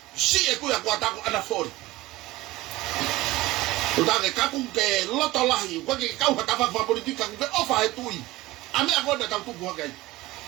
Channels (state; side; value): quieter; left; 18.4 dB